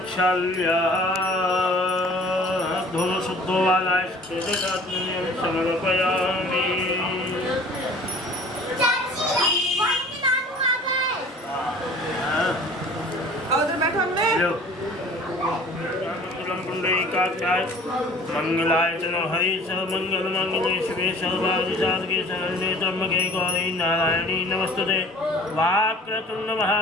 धो शुद्धो वालाय समर्पयामि। मंगलाय चलो हरि सर्वमंगल मंगले शिवे सर्वादि साधके शरण्ये त्र्यंबके गौरी नारायणी नमस्तुते। वाक्रतुंड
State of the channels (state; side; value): normal; both; correlation 0.48